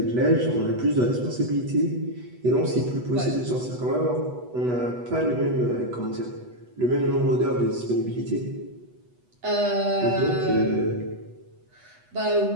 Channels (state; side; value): late; left; 8.1 ms